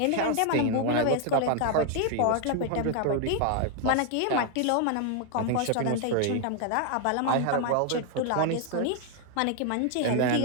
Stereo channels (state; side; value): different; both; correlation 0.00